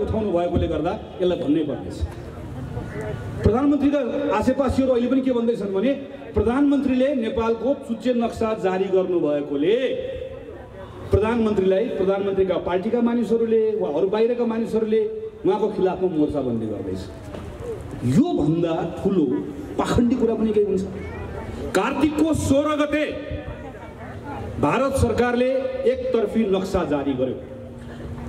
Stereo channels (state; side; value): identical; both; correlation 1.00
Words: उठाउनु भएकोले गर्दा यसलाई भन्नै पर्नेछ। प्रधानमन्त्रीका आसेपासीहरू अहिले पनि के भन्दैछन् भने प्रधानमन्त्रीले नेपालको चुच्चे नक्सा जारी गर्नुभएकोले प्रधानमन्त्रीका पार्टीका मानिसहरूले वा अरू बाहिरका मानिसहरूले उहाँको खिलाफमा मोर्चाबन्दी गर्दैछ। यो भन्दा ठुलो पाखण्डी कुरा पनि केही हुन्छ? कार्तिकको 16 गते भारत सरकारले एकतर्फी नक्सा जारी गर्यो।